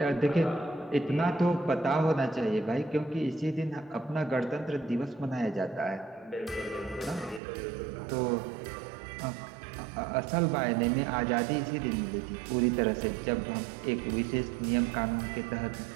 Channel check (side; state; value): left; drops out; at 7.4 s